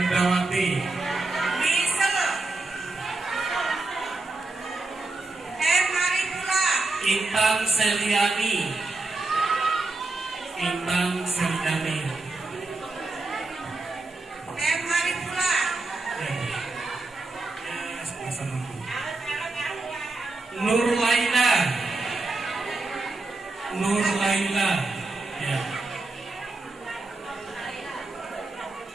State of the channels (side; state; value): left; quieter; 3.3 dB